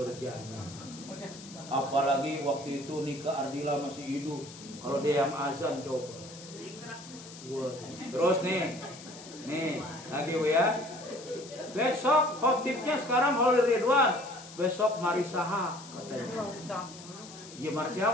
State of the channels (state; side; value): noise; left; hiss, 16 dB below the sound